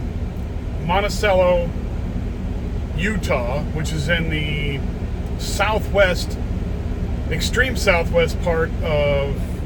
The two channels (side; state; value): both; identical; correlation 1.00